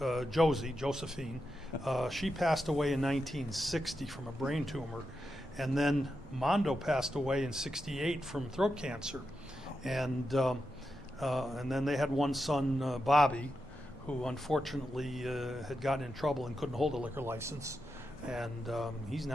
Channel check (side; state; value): both; normal; correlation 0.87